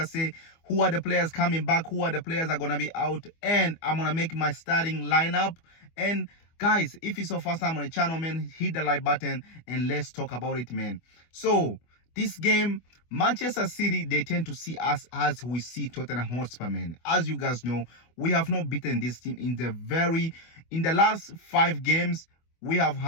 say? Who are the players coming back? Who are the players that are going to be out? And I'm going to make my starting lineup. And guys, if it's your first time on the channel, man, hit the like button and let's talk about it, man. So this game, Manchester City, they tend to see us as we see Tottenham Hotspur, man. As you guys know, we have not beaten this team in the last 5 games. We have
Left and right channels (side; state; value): right; late; 25 ms